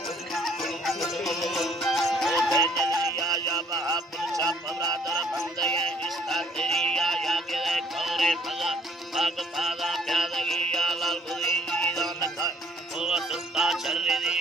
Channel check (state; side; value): normal; both; correlation 0.59